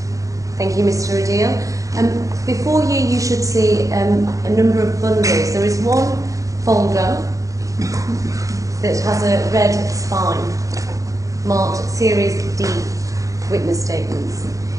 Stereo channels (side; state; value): left; late; 0.16 ms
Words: Thank you, Mr. Adil. Before you, you should see a number of bundles. There is one folder that has a red spine marked Series D, witness statements.